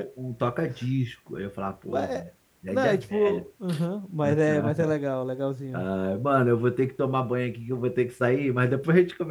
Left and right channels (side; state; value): both; identical; correlation 1.00